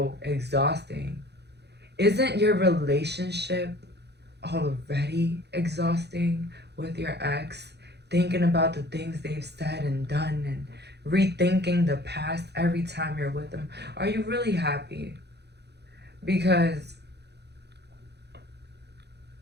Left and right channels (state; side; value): late; left; 0.49 ms